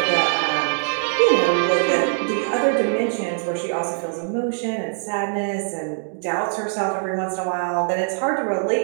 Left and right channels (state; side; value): silent; left; digital silence